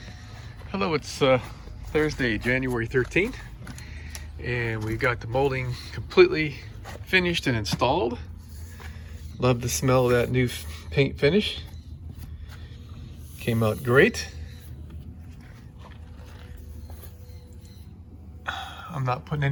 Hello, it's Thursday, January 13th. And we've got the molding completely finished and installed. Love the smell of that new paint finish. Came out great. I'm not putting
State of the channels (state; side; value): identical; both; correlation 1.00